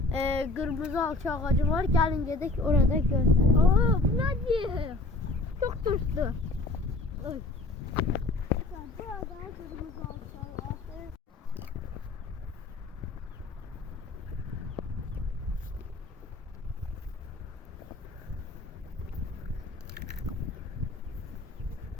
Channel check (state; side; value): quieter; right; 3.1 dB